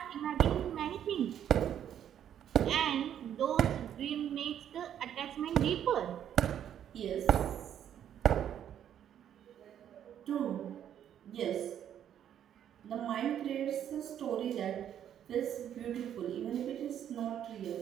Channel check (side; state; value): left; quieter; 9.9 dB